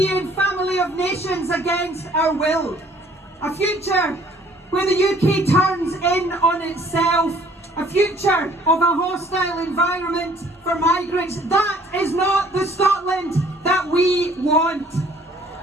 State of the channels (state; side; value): normal; both; correlation 0.57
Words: family of nations against our will. A future where the UK turns in on itself. A future of a hostile environment for migrants. That is not the Scotland that we want.